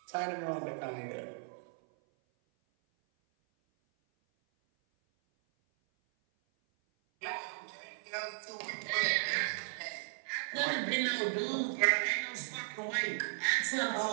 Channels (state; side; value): silent; left; 54 dB below the other